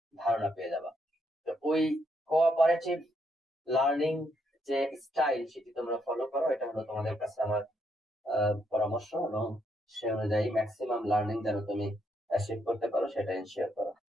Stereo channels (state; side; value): normal; both; correlation 0.76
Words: ধারণা পেয়ে যাবা। তো ওই কোঅপারেটিভ লার্নিং যে স্টাইল সেটি তোমরা ফলো করো, এটা হলো তোমাদের কাছে আমার পরামর্শ, এবং সে অনুযায়ী ম্যাক্সিমাম লার্নিং যেন তুমি অ্যাচিভ করতে পারো সেটা ইনশিওর করো।